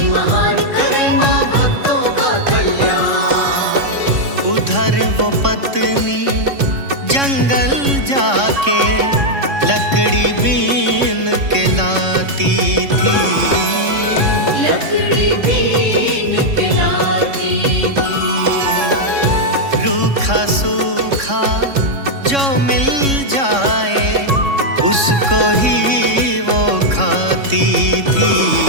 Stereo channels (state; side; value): late; left; 3.6 ms